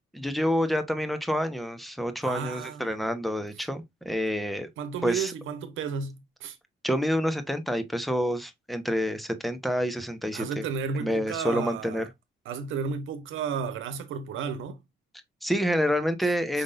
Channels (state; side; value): normal; both; correlation 0.79